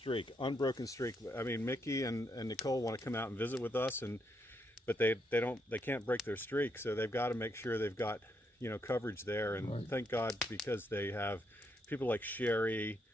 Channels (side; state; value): both; normal; correlation 0.78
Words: I mean, Mickey and Nicole want to come out and visit with us, but they can't break their streak, so they've got to make sure they've got coverage there. And Right. Thank God, because they have people like Sherry,